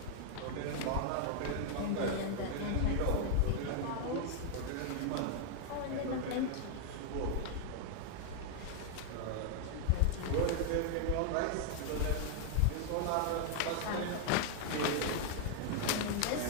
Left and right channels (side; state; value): both; different; correlation 0.00